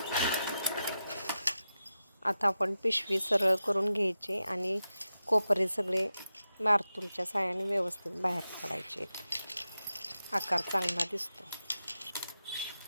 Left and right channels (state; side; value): inverted; both; correlation -0.91